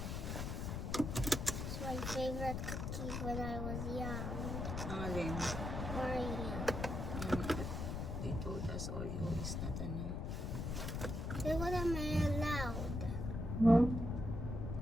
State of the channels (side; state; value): left; noise; rumble, 3 dB below the sound